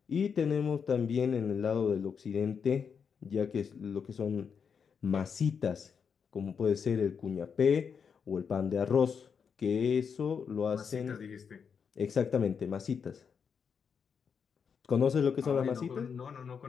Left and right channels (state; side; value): quieter; right; 6.5 dB